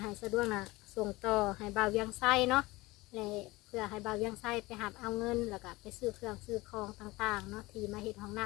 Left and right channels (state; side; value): quieter; right; 21.0 dB